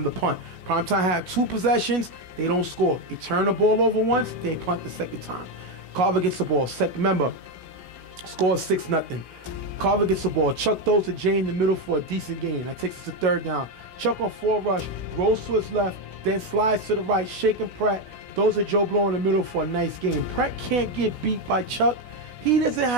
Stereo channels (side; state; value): left; late; 16 ms